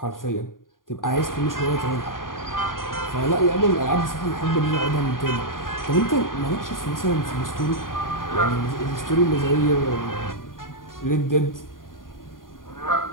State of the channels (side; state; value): right; late; 0.90 ms